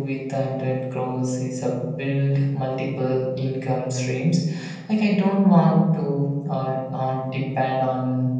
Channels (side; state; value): both; identical; correlation 1.00